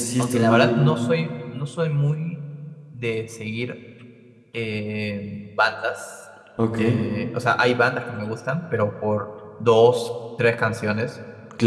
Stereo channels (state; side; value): identical; both; correlation 1.00